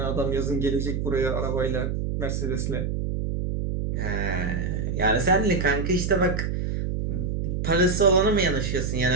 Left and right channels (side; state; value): right; noise; hum, 1 dB below the sound